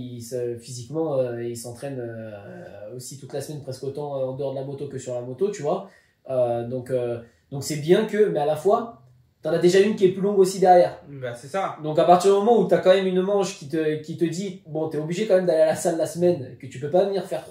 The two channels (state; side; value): identical; both; correlation 1.00